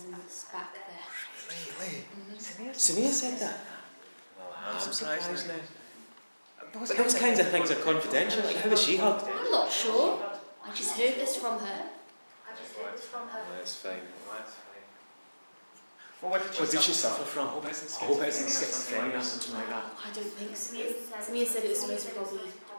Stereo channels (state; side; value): inverted; both; correlation -1.00